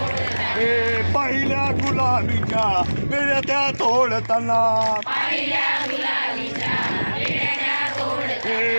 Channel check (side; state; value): both; inverted; correlation -1.00